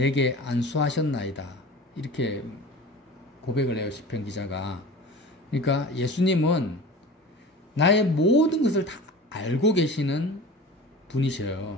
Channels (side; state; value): both; normal; correlation 0.37